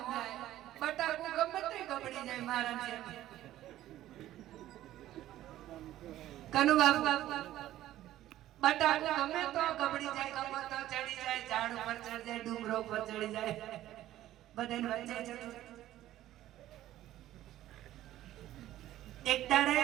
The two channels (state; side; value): quieter; left; 13.9 dB